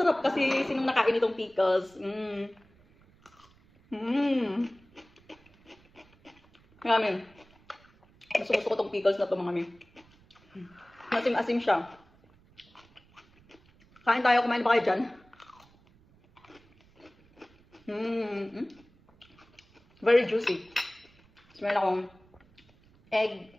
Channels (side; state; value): right; noise; rumble, 30 dB below the sound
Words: kasi sinong nakain itong pickles. Marami. Gusto ko itong pickles na ito, mga Mi. Masim-asim siya. Kain tayo, kumain ba kayo dyan? Very juicy. Meron akong